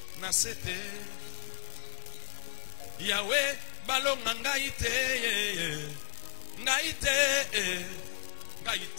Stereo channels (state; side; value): silent; right; 55 dB below the other